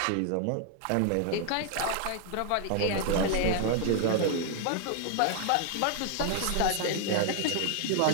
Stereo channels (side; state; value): both; different; correlation 0.00